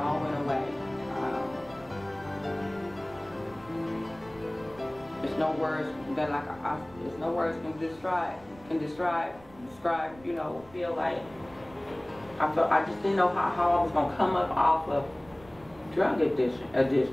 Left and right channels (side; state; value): right; noise; rumble, 23 dB below the sound